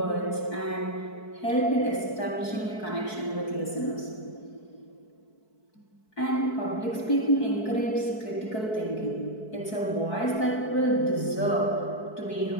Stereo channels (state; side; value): late; right; 4.6 ms